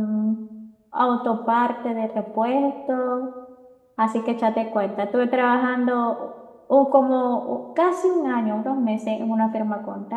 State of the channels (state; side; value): identical; both; correlation 1.00